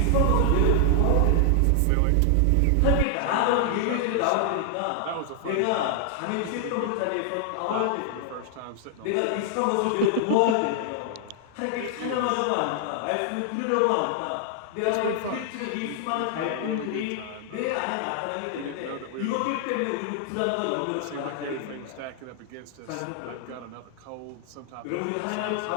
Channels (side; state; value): both; different; correlation 0.00